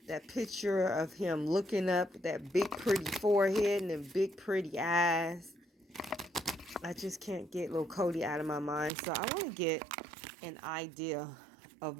That picture of him looking up, that big pretty forehead and them big pretty eyes. I just can't get little Cody out of my mind. So I want to get an idea of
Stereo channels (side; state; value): left; drops out; at 8.9 s